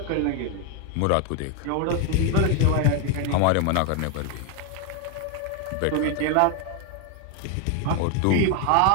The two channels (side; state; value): both; different; correlation 0.01